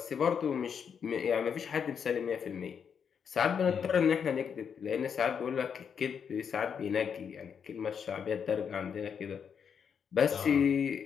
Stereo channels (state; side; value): quieter; right; 7.1 dB